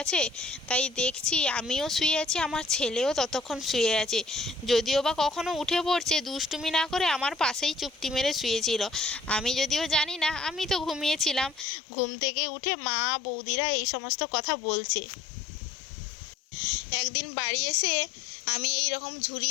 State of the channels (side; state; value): right; drops out; at 11.7 s